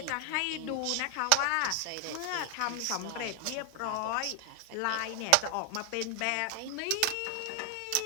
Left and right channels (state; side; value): different; both; correlation 0.00